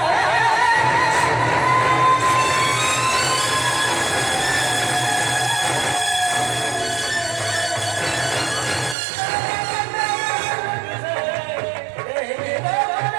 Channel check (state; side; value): drops out; left; at 9.0 s